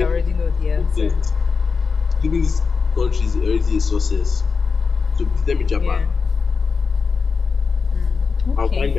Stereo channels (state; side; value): quieter; right; 5.0 dB